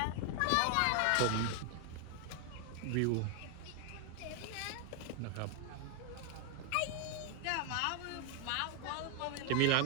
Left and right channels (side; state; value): both; different; correlation 0.00